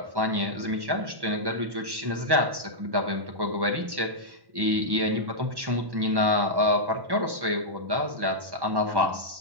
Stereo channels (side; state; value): left; late; 1.1 ms